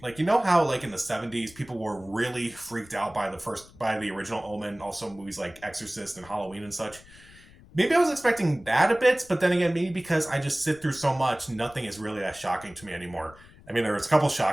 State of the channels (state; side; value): noise; left; rumble, 23 dB below the sound